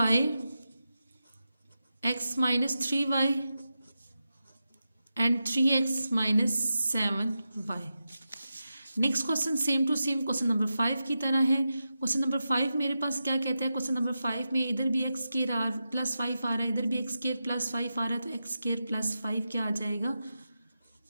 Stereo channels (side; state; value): both; inverted; correlation -0.90